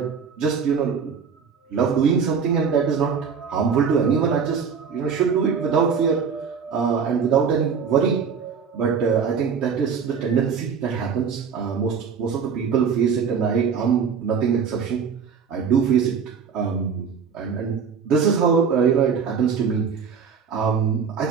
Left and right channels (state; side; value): quieter; left; 6.4 dB